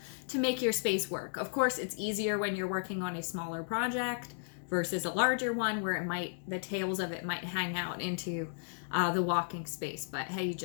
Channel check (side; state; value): right; silent; digital silence